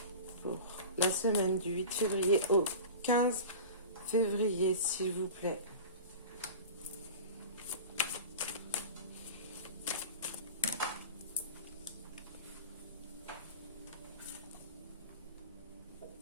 Pour la semaine du 8 février au 15 février, s'il vous plaît.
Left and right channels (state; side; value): inverted; both; correlation -0.34